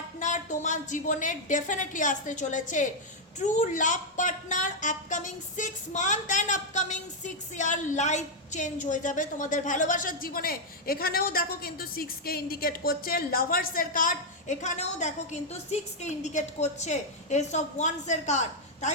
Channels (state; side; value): normal; both; correlation -0.02